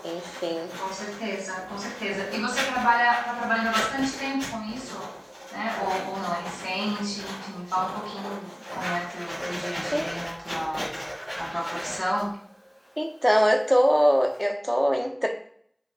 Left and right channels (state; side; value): identical; both; correlation 1.00